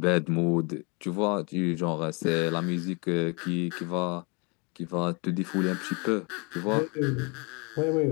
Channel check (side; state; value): right; quieter; 31.2 dB